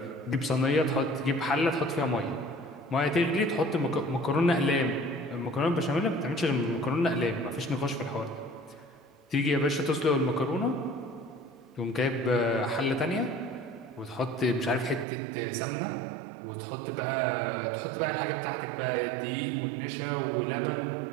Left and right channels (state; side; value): drops out; left; at 15.1 s